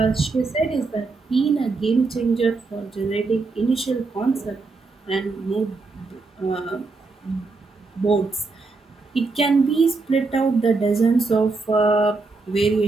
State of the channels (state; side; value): quieter; left; 3.9 dB